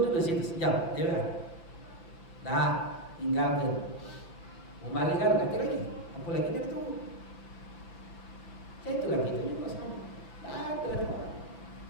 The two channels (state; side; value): late; right; 5.8 ms